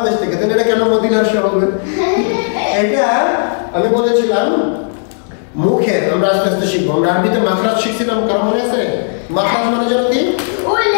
থেকে। তাহলে এটা কেন মদিনার শ হবে? এটা আমি বলেছিলাম মুখের, আমরা আস্তে আস্তে শিখবো। আমরা আরবিতে মাখরাজ শিখছিলাম, কারণ মনে আছে মাখরাজ মানে যেন কি?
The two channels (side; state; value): right; silent; digital silence